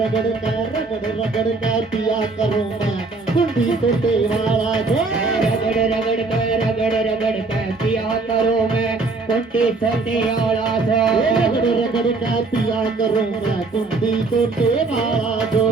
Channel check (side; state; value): left; quieter; 3.8 dB